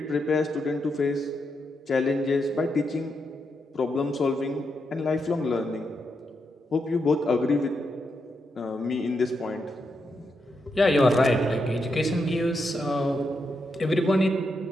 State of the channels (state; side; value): normal; both; correlation 0.83